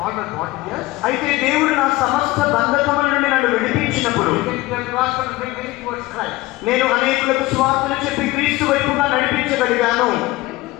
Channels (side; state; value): right; quieter; 19.3 dB